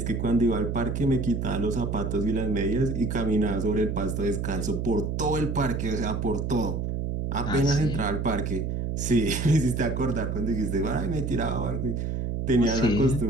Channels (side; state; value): right; noise; hum, 2 dB below the sound